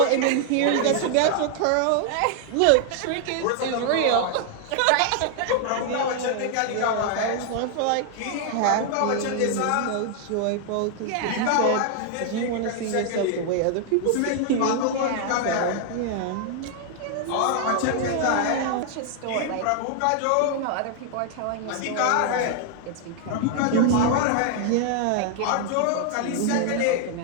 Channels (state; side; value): different; both; correlation 0.00